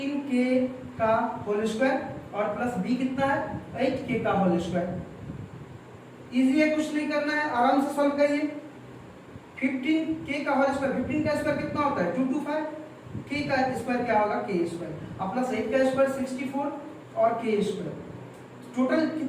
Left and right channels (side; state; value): both; identical; correlation 1.00